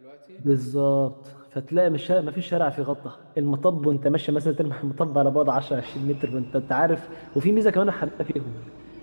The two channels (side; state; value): both; inverted; correlation -1.00